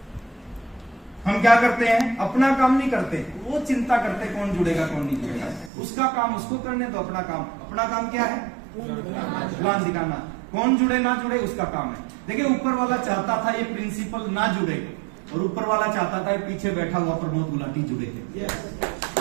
हम क्या करते हैं, अपना काम नहीं करते, वो चिंता करते कौन जुड़ेगा कौन नहीं जुड़ेगा। उसका काम उसको करने दो, अपना काम क्या है? प्लान दिखाना। कौन जुड़े ना जुड़े उसका काम है। देखिए ऊपर वाला चाहता था ये प्रिंसिपल ना जुड़े और ऊपर वाला चाहता था पीछे बैठा हुआ प्रमोद गुलाटी जुड़े थे।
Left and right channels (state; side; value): drops out; left; at 5.7 s